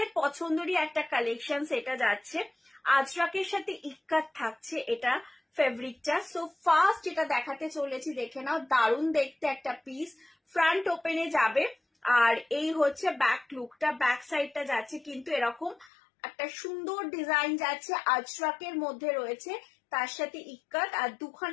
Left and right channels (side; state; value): right; drops out; at 15.9 s